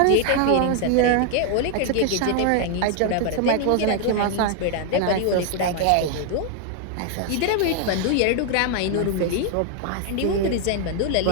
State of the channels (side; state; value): both; different; correlation 0.00